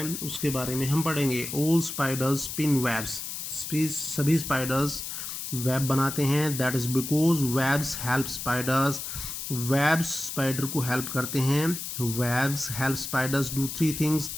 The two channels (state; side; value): noise; left; hiss, 6 dB below the sound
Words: उसके बारे में हम पढ़ेंगे। ऑल स्पाइडर्स स्पिन वेब्स, सभी स्पाइडर्स वेब बनाते हैं, that is because webs help spiders, webs spider को हेल्प करते हैं। Webs help spiders do three things,